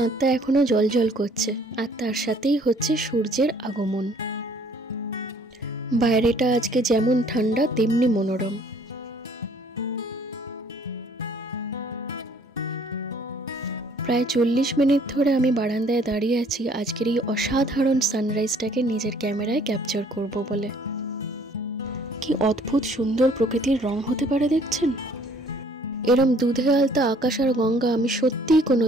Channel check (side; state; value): both; normal; correlation 0.59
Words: एखोनो जलजल करছে আর তার সাথেই হচ্ছে সূর্যের আগমন। বাইরেটা আজকে যেমন ঠান্ডা তেমনি মনোরম। প্রায় 40 মিনিট ধরে আমি বারান্দায় দাঁড়িয়ে আছি আজকের এই অসাধারণ সানরাইজটাকে নিজের ক্যামেরায় ক্যাপচার করব বলে। কি অদ্ভুত সুন্দর প্রকৃতির রং হতে পারে দেখছেন। এরম দুধে আলতা আকাশ আর গঙ্গা আমি সত্যিই